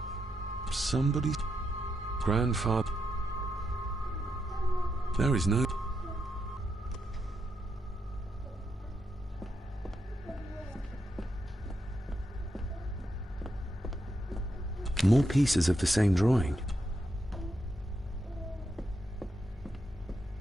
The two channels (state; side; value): normal; both; correlation 0.83